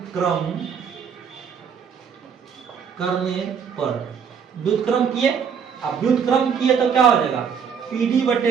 करने पर, व्युत्क्रम किए, अब व्युत्क्रम किए तो क्या हो जाएगा? पीडी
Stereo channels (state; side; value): quieter; left; 6.9 dB